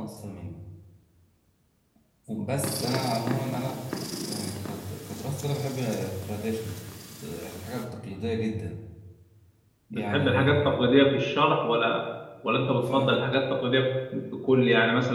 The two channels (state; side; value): identical; both; correlation 1.00